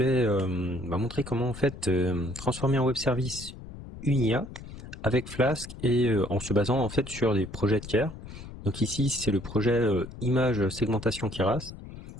montrer comment en fait transformer un web service une IA avec Flask et en se basant en fait sur des projets tiers. Donc ici c'est le projet image segmentation Keras,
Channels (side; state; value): left; noise; rumble, 13 dB below the sound